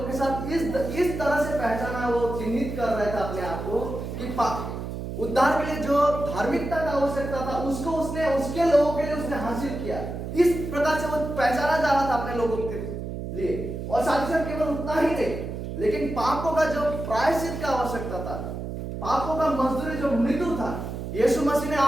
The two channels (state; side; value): noise; right; hum, 6 dB below the sound